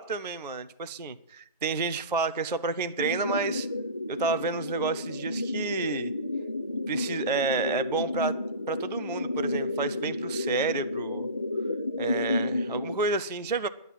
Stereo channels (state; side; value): inverted; both; correlation -0.31